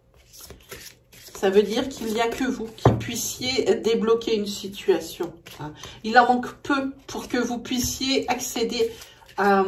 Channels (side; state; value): both; identical; correlation 1.00